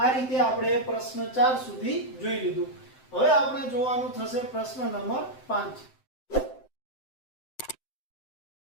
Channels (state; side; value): late; right; 7.8 ms